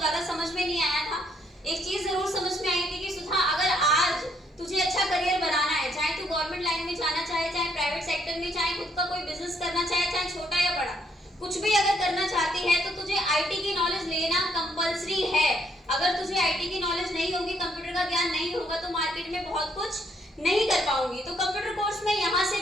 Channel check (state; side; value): normal; both; correlation 0.70